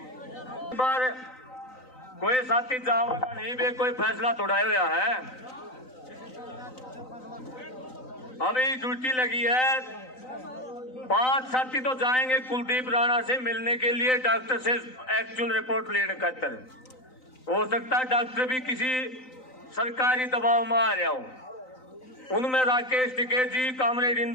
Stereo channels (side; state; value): right; late; 3.9 ms